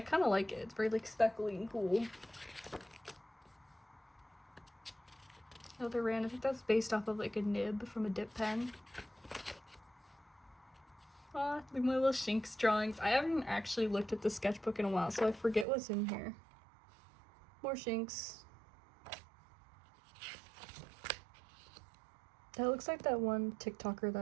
of like it. It's very like speckly and cool. Another random, I think that's based off of like a nib from a dip pen. Like my little Shinx drawings. I haven't actually looked at the sketchbook in a while, so I forget what's in here. More Shinx. That looks like that one TikToker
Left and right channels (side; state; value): left; drops out; at 15.7 s